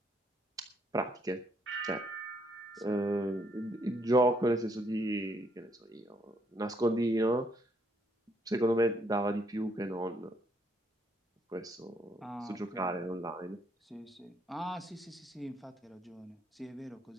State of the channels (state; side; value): normal; both; correlation 0.71